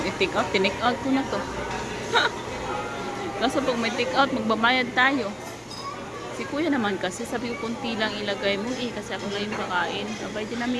i-take out, tinake out ko na to. Kaso pag may take out, magbabayad tayo. Si kuya naman kasi, sabi ko kunti lang ilagay mo kasi ako na yung kakain. Abay,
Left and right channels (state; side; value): identical; both; correlation 1.00